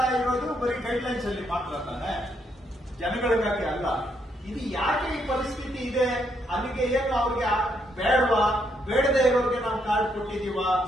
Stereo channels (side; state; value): both; normal; correlation 0.75